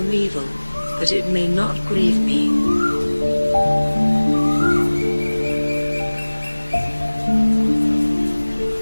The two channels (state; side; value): inverted; both; correlation -1.00